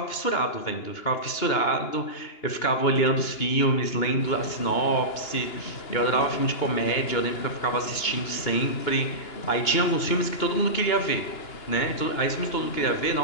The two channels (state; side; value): late; right; 2.9 ms